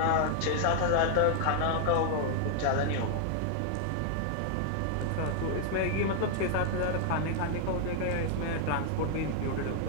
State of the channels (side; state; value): both; different; correlation 0.00